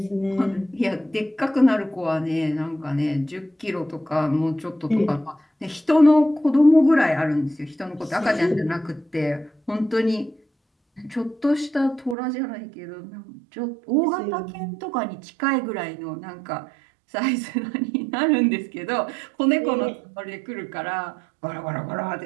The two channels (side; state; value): left; drops out; at 12.2 s